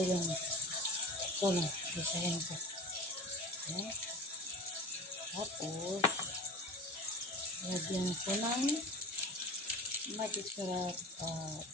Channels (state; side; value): normal; both; correlation 0.33